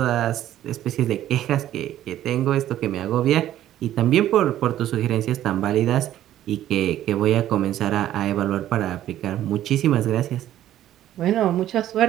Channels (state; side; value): quieter; left; 12.5 dB